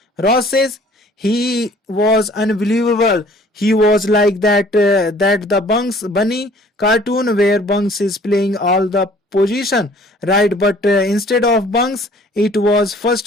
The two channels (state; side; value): normal; both; correlation 0.54